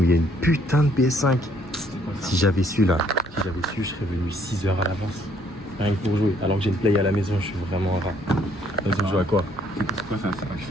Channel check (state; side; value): normal; both; correlation 0.65